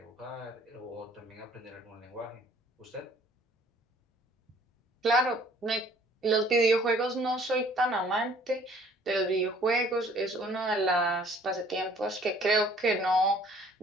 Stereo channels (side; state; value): both; normal; correlation 0.56